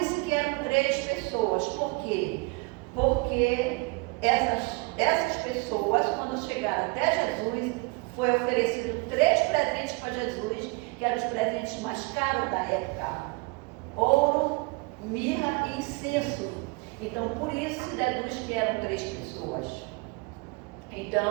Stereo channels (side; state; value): left; quieter; 28.3 dB